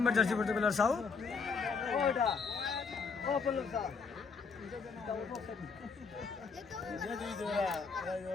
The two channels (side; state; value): right; quieter; 5.1 dB